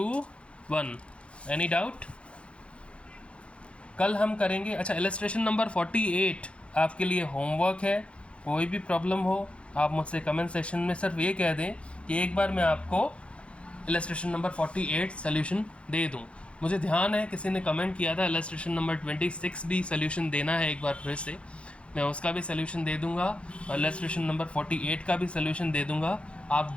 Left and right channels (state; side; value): late; right; 0.060 ms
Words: Any doubt? कल हम करेंगे, अच्छा इलस्ट्रेशन नंबर 48 आपके लिए होमवर्क है, कोई भी प्रॉब्लम हो आप मुझसे कमेंट सेक्शन में सिर्फ ये कह दें कि एक बार मैं आपको इलस्ट्रेशन नंबर 48 सोल्यूशन दे दूं। मुझे ध्यान है किसी ने कमेंट किया था इलस्ट्रेशन नंबर 26 भी सोल्यूशन देना है, एक बार फिर से मैं उसका भी सोल्यूशन दे दूंगा और इलस्ट्रेशन नंबर 48 का भी सोल्यूशन दे दूंगा। आप